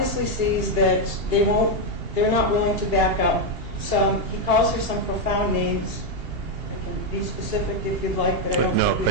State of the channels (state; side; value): late; left; 2.8 ms